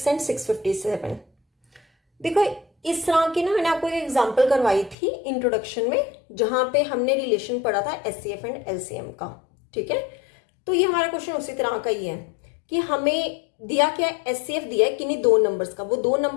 and 657। देखो इस तरह की ना मैंने आपको एक एग्जांपल करवाई थी इंट्रोडक्शन में, जहां पे हमने रिलेशन पढ़ा था एचसीएफ एंड एलसीएम का। ठीक है, तो ये हमारा क्वेश्चन उसी तरह का ही है कि हमें दिया क्या है? एचसीएफ दिया है किन्हीं 2 नंबर्स का। वो 2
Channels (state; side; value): drops out; right; at 5.0 s